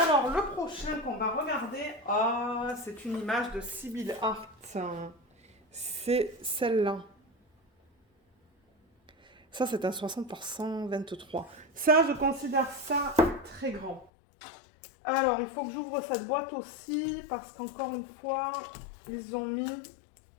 le prochain qu'on va regarder, c'est une image de Sibyl Art. C'est celle-là. Ça, c'est un 60 par 123. Ça, je considère ça très grand. Alors, il faut que j'ouvre cette boîte aussi, parce qu'encore une fois, ils ont mis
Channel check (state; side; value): drops out; right; at 14.1 s